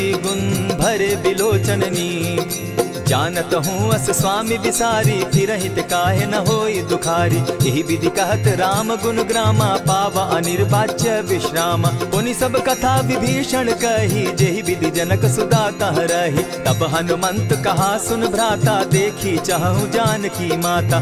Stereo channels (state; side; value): identical; both; correlation 1.00